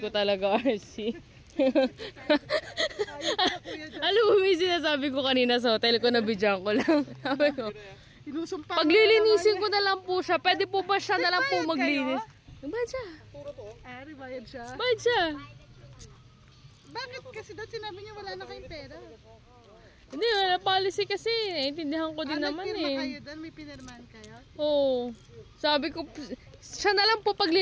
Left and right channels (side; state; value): both; identical; correlation 1.00